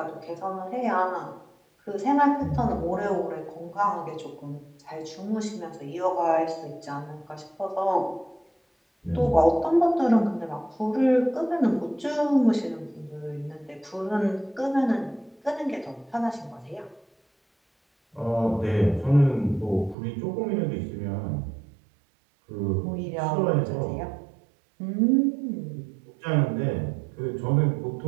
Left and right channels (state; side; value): drops out; left; at 20.0 s